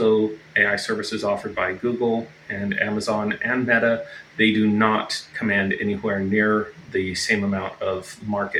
AI services offered by Google and Amazon and Meta. They do not command anywhere near the same amount of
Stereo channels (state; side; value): identical; both; correlation 1.00